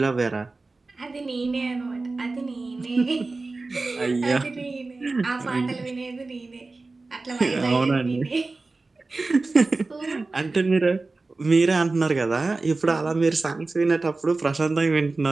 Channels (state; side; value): quieter; left; 3.5 dB